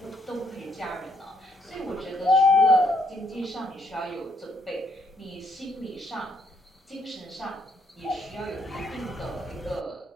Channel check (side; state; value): both; normal; correlation 0.71